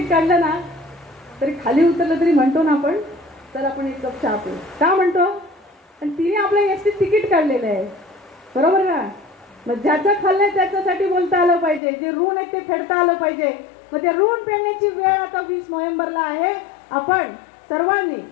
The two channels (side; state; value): right; drops out; at 11.8 s